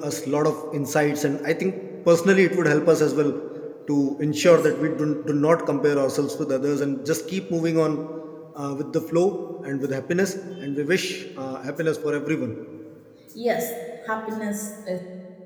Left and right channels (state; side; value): identical; both; correlation 1.00